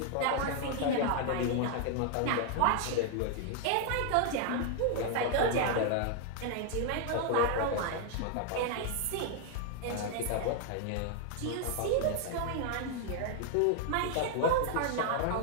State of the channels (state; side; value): different; both; correlation 0.00